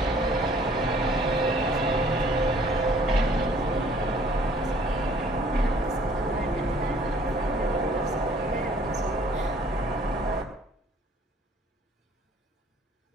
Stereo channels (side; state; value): both; normal; correlation 0.57